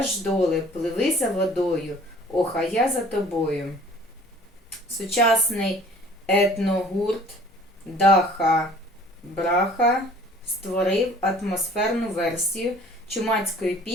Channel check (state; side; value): normal; both; correlation 0.51